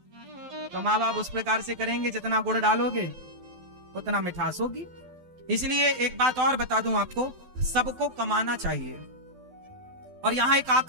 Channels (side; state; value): left; late; 12 ms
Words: तो माँ बाप उस प्रकार से करेंगे, जितना गुड़ डालोगे उतना मिठास होगी। इसलिए एक बात और बता दूं आपको, सबको कमाना चाहिए। और यहाँ एक